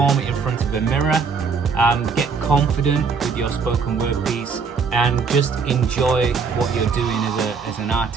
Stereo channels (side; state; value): left; quieter; 5.4 dB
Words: it in front of a mirror, get confident with your spoken word piece, and just enjoy what you're doing as an